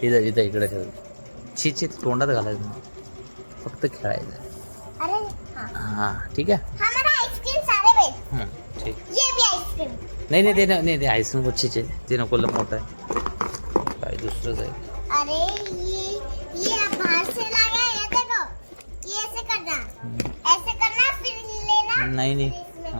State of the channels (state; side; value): inverted; both; correlation -1.00